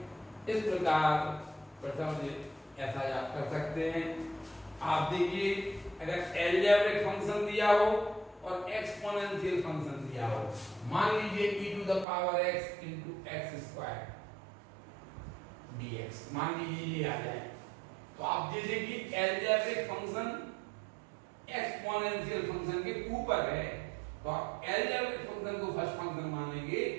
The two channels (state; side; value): drops out; left; at 12.1 s